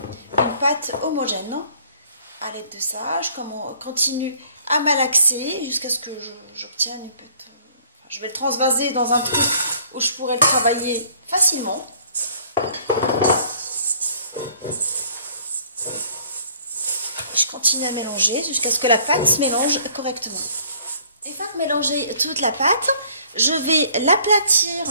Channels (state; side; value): inverted; both; correlation -0.57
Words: une pâte homogène. À l'aide de ça, je continue à malaxer jusqu'à ce que j'obtienne une pâte. Je vais le transvaser dans un truc où je pourrais le travailler facilement. Je continue à mélanger jusqu'à ce que la pâte se mélange correctement. Une fois que mélangé toute la pâte, je vais l'aplatir